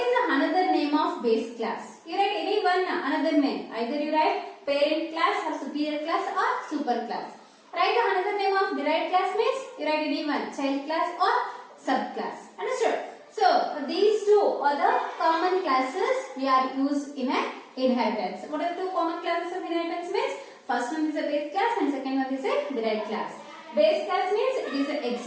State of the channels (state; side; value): identical; both; correlation 1.00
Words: is the another name of base class? You write any one another name. Either you write parent class or superior class or super class. Write the another name of derived class means you write any one child class or subclass. Understood? So these two are the common classes we are used in a inheritance. What are the two common classes of inheritance means? First one is a base class and second one is a derived class. Base class means it is an